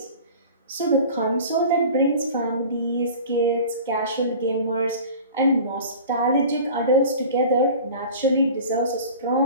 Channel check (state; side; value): inverted; both; correlation -0.40